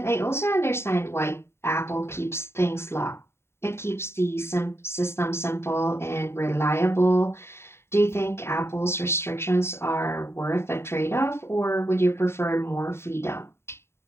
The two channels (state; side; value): late; right; 0.12 ms